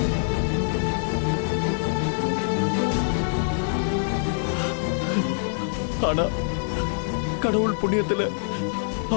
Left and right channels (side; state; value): right; silent; digital silence